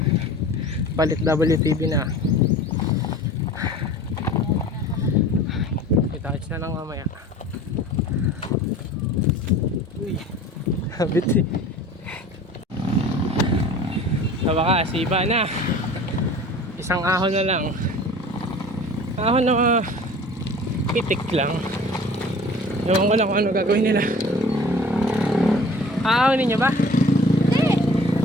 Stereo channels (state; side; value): normal; both; correlation 0.44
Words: Palit WTB na. Itouch na lang mamaya. Uy, habit eh. Sa wakas, iba na. Isang ahon na lang. Ahon na pitik lang. Ewan ko lang kung ano gagawin nila. Aahonin nyo ba? Hindi.